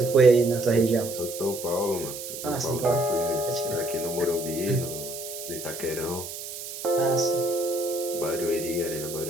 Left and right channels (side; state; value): right; noise; hiss, 9 dB below the sound